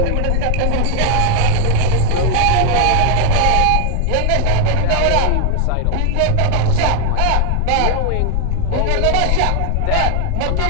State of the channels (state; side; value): different; both; correlation 0.00